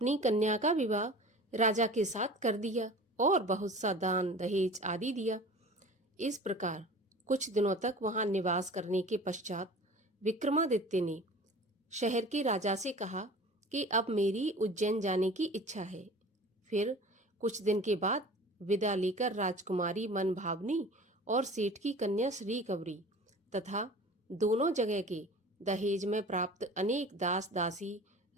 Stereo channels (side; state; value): both; normal; correlation 0.41